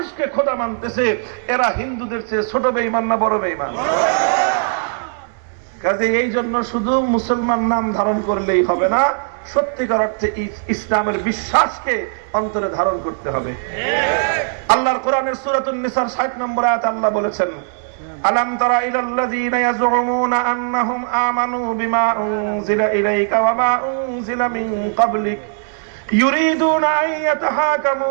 খোদা মানতেছে, এরা হিন্দুদের চেয়ে ছোট বেঈমান না বড় বেঈমান? কাজে এই জন্য শুধু মুসলমান নাম ধারণ করলেই হবে না, সত্যিকার অর্থে ইসলামের বিশ্বাসকে অন্তরে ধারণ করতে হবে। আল্লাহর কোরআনের সূরাতুন নিসার 60 নম্বর আয়াতে আল্লাহ বলেছেন, আলাম তারা ইলাল্লাযীনা ইয়াজউমুনা আন্নাহুম আমানু বিমা উনজিলা ইলাইকা ওয়া মা উনজিলা মিন ক্বাবলিক ইউরিদুনা আন ইয়াতাহাকামু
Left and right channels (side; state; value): left; silent; 67 dB below the other